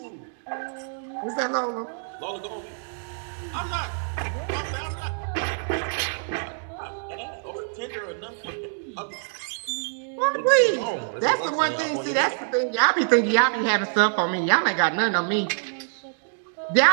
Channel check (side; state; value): left; silent; digital silence